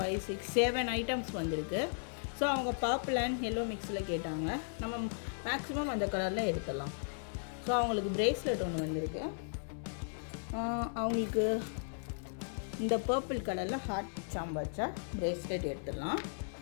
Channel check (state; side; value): silent; right; digital silence